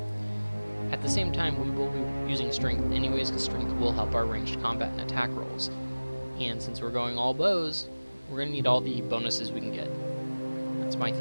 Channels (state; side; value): inverted; both; correlation -1.00